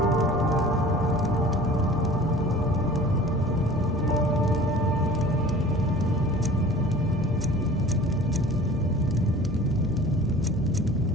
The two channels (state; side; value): normal; both; correlation 0.44